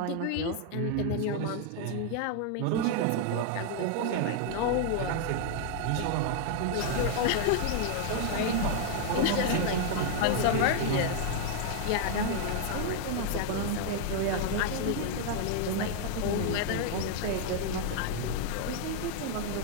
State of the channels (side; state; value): both; different; correlation 0.00